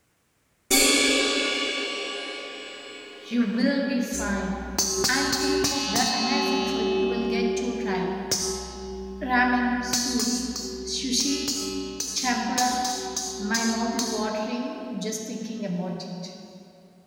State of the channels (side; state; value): both; identical; correlation 1.00